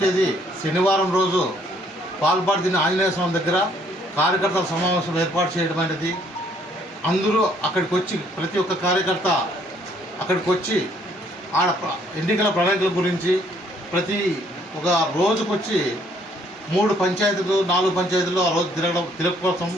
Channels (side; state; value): both; normal; correlation 0.65